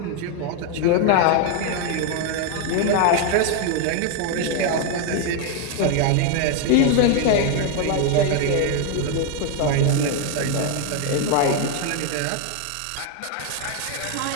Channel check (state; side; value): different; both; correlation 0.01